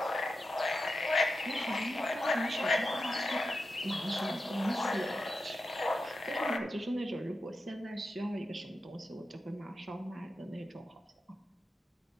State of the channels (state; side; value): normal; both; correlation 0.90